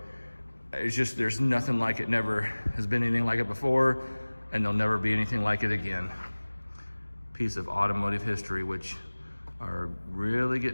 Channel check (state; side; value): inverted; both; correlation -1.00